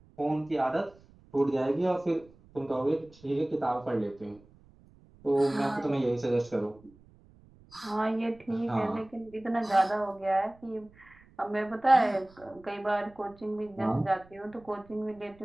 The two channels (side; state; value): right; noise; rumble, 26 dB below the sound